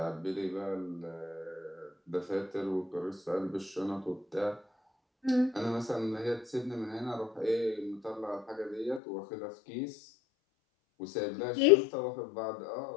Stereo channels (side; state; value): right; drops out; at 9.0 s